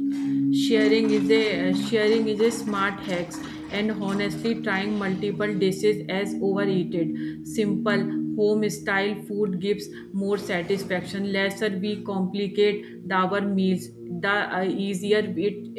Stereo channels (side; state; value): both; identical; correlation 1.00